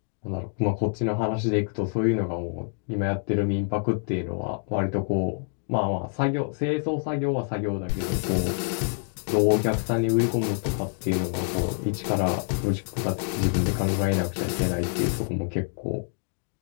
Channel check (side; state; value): right; silent; 60 dB below the other